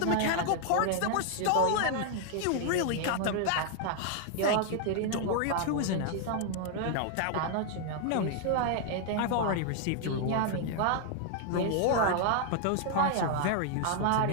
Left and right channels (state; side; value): different; both; correlation 0.00